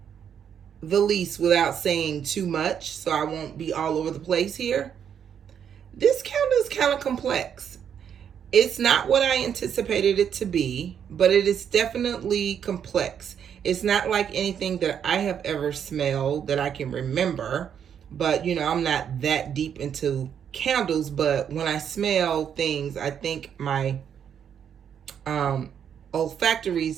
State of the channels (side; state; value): left; quieter; 8.3 dB